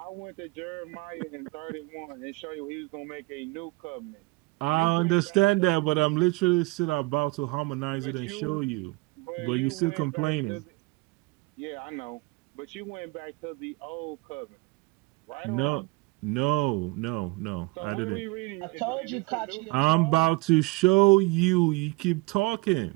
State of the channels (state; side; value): quieter; left; 24.8 dB